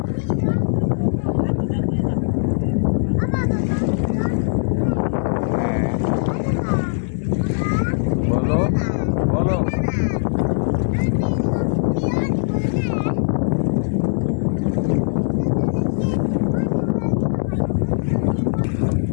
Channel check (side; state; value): right; silent; digital silence